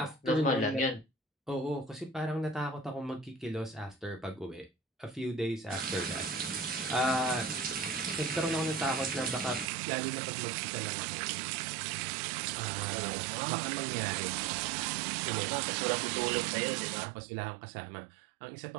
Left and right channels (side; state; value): left; drops out; at 9.7 s